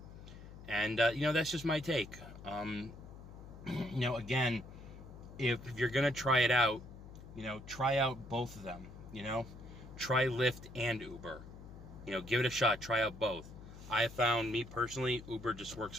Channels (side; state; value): left; noise; hum, 15 dB below the sound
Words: And, that's just my take. Again, if you're going to try it out, try out both of them, Try Lyft and Uber. Give it a shot. Try out both. I have found, me personally, Uber just